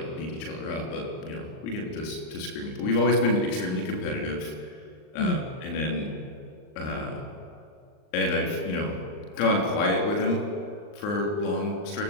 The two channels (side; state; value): right; late; 39 ms